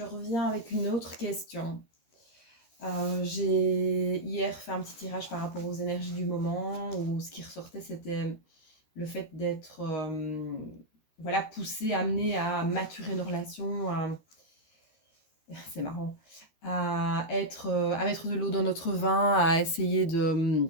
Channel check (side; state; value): right; late; 13 ms